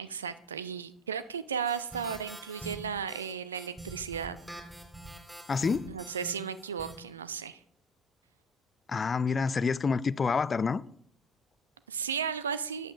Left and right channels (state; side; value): normal; both; correlation 0.33